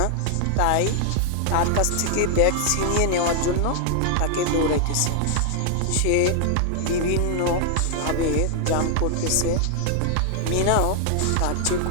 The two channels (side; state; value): both; different; correlation 0.00